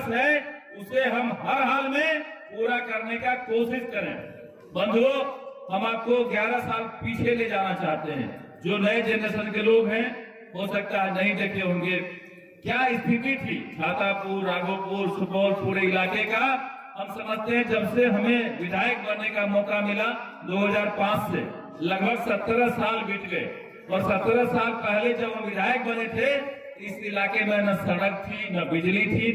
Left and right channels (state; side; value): identical; both; correlation 1.00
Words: है, उसे हम हर हाल में पूरा करने का कोशिश करें। बंधुओं, हम आपको 11 साल पीछे ले जाना चाहते हैं। जो नए जनरेशन के लोग हैं, हो सकता है नहीं देखे होंगे क्या स्थिति थी छातापुर, राघोपुर, सुपौल पूरे इलाके का। हम समझते हैं जब से हमें विधायक बनने का मौका मिला 2005 से लगभग 17 साल बीत गए, और 17 साल पहले जब हम विधायक बने थे, इस इलाके में न सड़क थी, न बिजली थी,